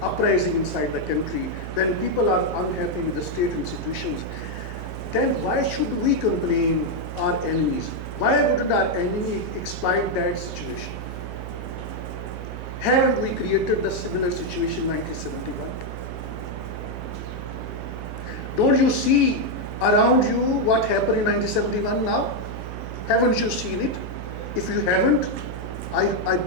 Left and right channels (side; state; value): right; noise; hum, 9 dB below the sound